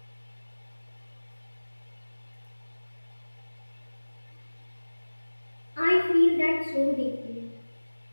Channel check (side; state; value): both; inverted; correlation -1.00